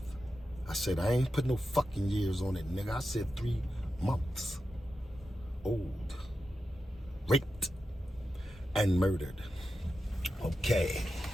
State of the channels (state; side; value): normal; both; correlation 0.90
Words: I said, I ain't put no fucking years on it, nigga. I said 3 months old. Raped and murdered. Okay.